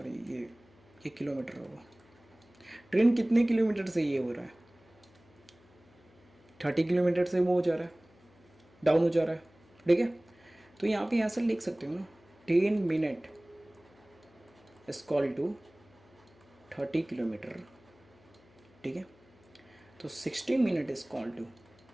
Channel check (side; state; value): left; noise; hum, 28 dB below the sound